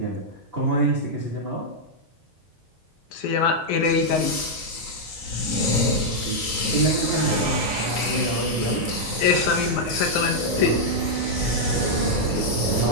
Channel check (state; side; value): normal; both; correlation -0.04